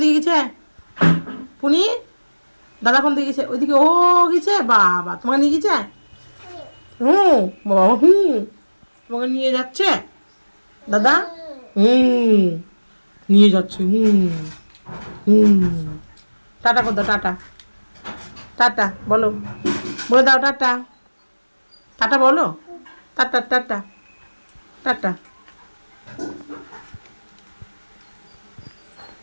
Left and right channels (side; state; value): both; inverted; correlation -1.00